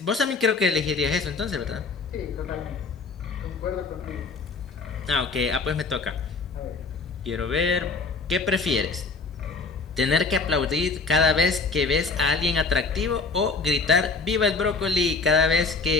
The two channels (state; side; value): quieter; right; 4.3 dB